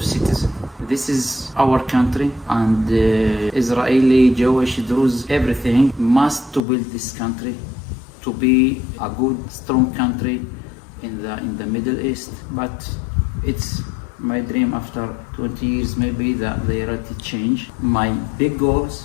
citizen. This is our country, and Israeli, Jewish, Druze, everything must to build this country to be a good, strong country in the Middle East. But it's my dream after 20 years, maybe the reality change. My big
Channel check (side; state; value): right; drops out; at 6.6 s